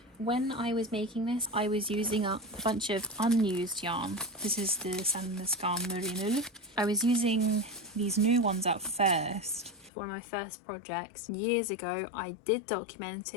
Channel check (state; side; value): drops out; right; at 9.9 s